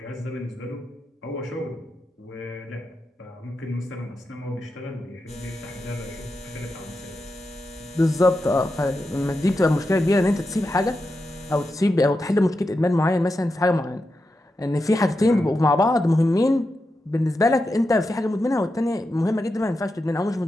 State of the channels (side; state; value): both; normal; correlation 0.88